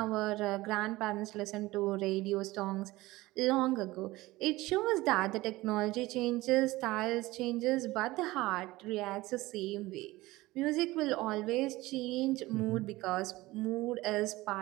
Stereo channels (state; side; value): quieter; left; 19.1 dB